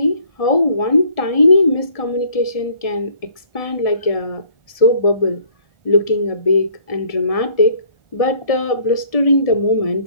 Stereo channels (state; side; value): late; right; 1.7 ms